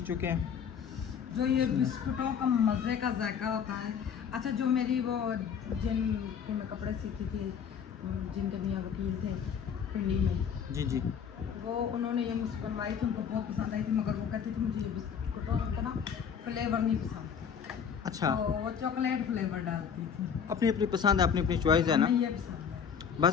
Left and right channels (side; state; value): right; quieter; 7.3 dB